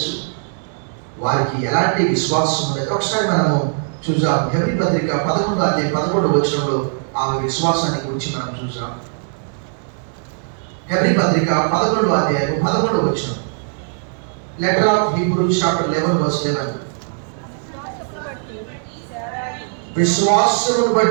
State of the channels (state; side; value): silent; left; digital silence